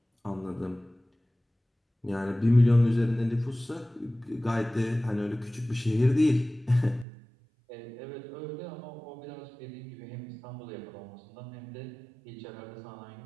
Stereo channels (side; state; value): left; drops out; at 7.1 s